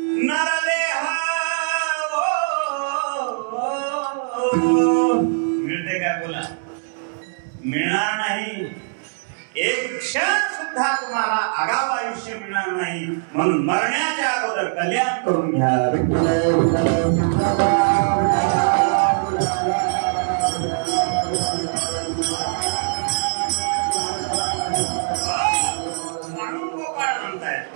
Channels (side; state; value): left; silent; 64 dB below the other